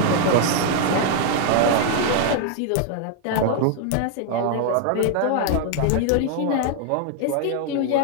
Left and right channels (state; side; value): different; both; correlation 0.00